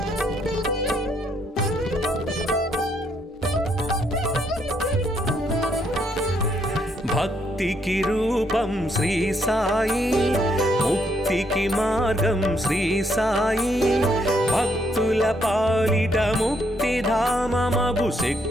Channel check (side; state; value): both; normal; correlation 0.73